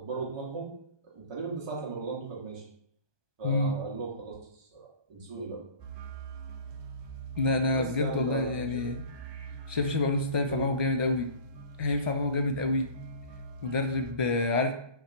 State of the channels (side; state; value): left; late; 1.2 ms